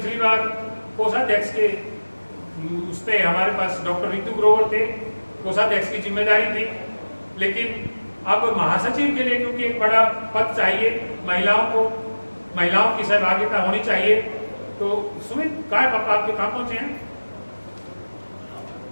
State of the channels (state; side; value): inverted; both; correlation -1.00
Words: बार कोषाध्यक्ष के उस पे हमारे पास डॉक्टर रितु ग्रोवर थे, कोषाध्यक्ष की जिम्मेदारी थी, लेकिन अब महासचिव के लिए क्योंकि एक बड़ा पद चाहिए, महिलाओं की सहभागिता होनी चाहिए। तो सुमित काय पापा आपके कहाँ पहुंचे हैं?